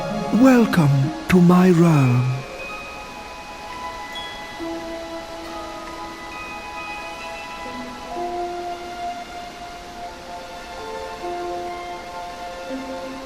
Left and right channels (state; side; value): identical; both; correlation 1.00